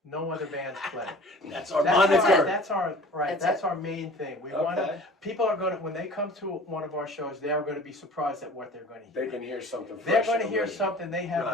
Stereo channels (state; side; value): normal; both; correlation 0.45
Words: no other bands play. That's our That's moniker. That's our main thing. We want Okay. people are going to, when they come to one of our shows, they are going to be surprised at what they're going to hear. They can hear something They're fresh. going to and hear original. something they have